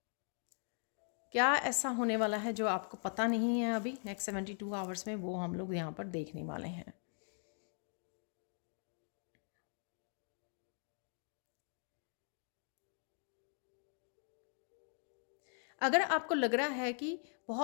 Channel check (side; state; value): right; silent; 51 dB below the other